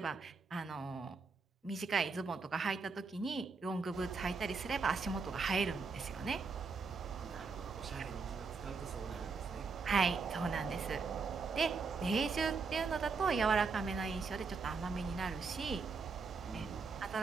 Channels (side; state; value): left; quieter; 4.7 dB